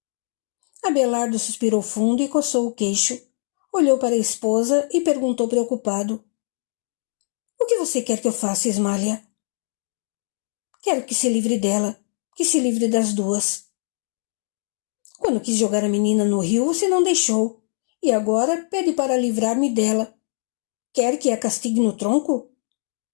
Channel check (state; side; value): silent; right; 57 dB below the other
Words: Abelardo suspirou fundo e coçou o queixo. Olhou para a esposa e perguntou preocupado. O que você quer que eu faça, Ismália? Quero que se livre dela, que se livre das duas. Quando quis jogar a menina no rio, você não deixou. E agora pede para livrar-me dela. Quer que a castigue no tronco?